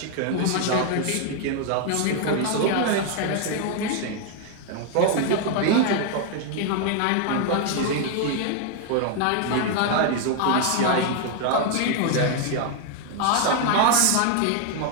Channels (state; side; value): different; both; correlation 0.00